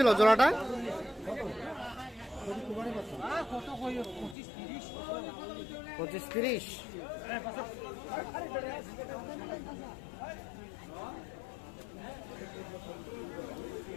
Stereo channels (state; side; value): drops out; right; at 4.4 s